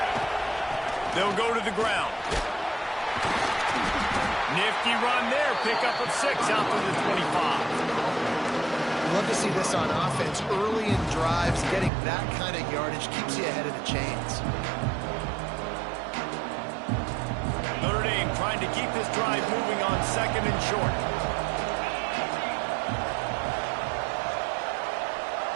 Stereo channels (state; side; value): drops out; left; at 11.9 s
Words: They'll go to the ground. Nifty run there. Pickup of 6 out to the 25. Love to see this on offense. Early in drives, getting that kind of yardage keeps you ahead of the chains. Notre Dame trying to keep this drive moving on 2nd and short.